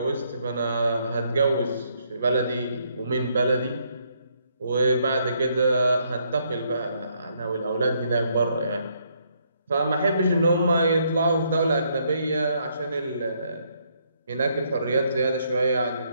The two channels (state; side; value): inverted; both; correlation -0.72